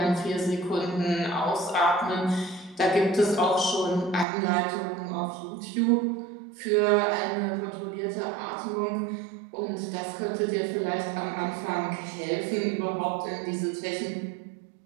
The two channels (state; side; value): drops out; left; at 4.2 s